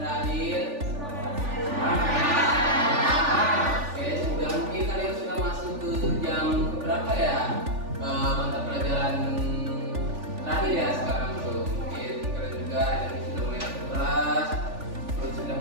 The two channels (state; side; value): late; left; 3.4 ms